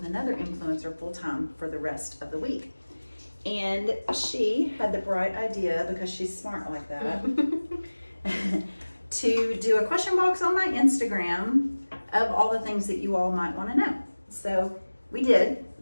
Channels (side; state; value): both; inverted; correlation -1.00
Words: another influencer full-time for the rest of the week. And she had the bright idea, because she's smart like that, to do a question box on my Instagram of all the things that you all might want to know. So we did